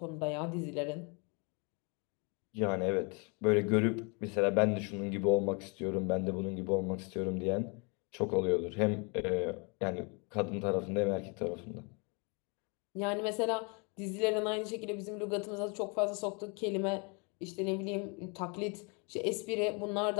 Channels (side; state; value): right; quieter; 33.1 dB